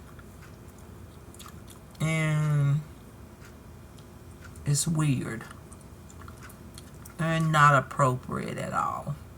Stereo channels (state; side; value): identical; both; correlation 1.00